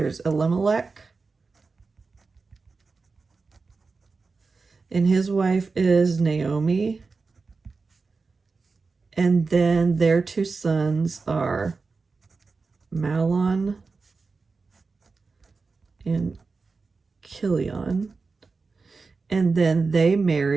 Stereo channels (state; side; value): quieter; left; 4.3 dB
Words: Elimelech, and his wife is Naomi. And then their two sons are Mahlon and Chilion. And then they